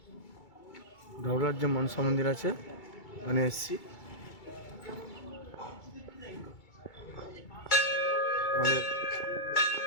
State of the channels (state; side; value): late; right; 2.3 ms